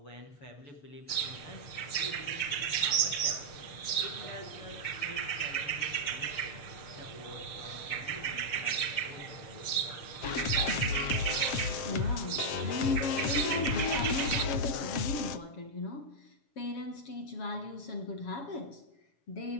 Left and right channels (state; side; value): late; right; 6.7 ms